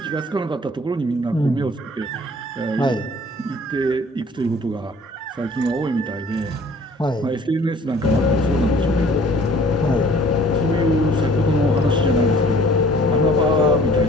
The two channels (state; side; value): normal; both; correlation 0.53